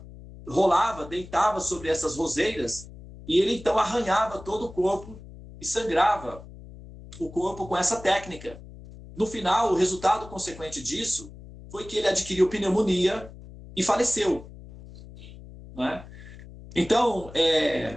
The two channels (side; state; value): left; noise; hum, 17 dB below the sound